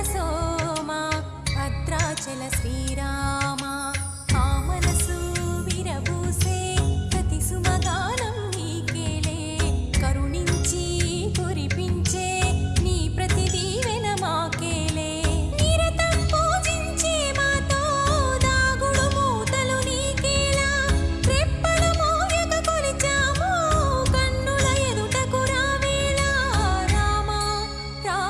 సోమ భద్రాచల శ్రీరామ. ఆ మనసు విరబూసే ప్రతి సుమగానం నీకేలే, కరుణించి కురిపించే నీ ప్రతి దీవెన మాకేలే. నిరతం పూజించే మాతో దాగుడు మూతలు నీకేలా, రెప్పలు మోయక కొలిచాము కన్నుల ఎదుటకు రావేలా. రామ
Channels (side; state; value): both; identical; correlation 1.00